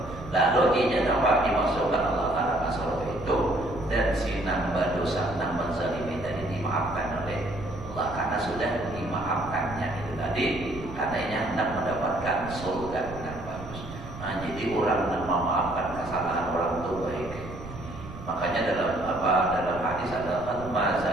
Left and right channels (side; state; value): right; noise; rumble, 13 dB below the sound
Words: Lalu ini dapat dimasukkan Allah Ta'ala ke surga itu, dan si nambah dosa, nambah zalimi tadi dimaafkan oleh Allah karena sudah dimaafkannya itu tadi. Karena ini hendak mendapatkan surga yang bagus. Nah, jadi orang yang memaafkan kesalahan orang itu baik. Makanya dalam hadis adalah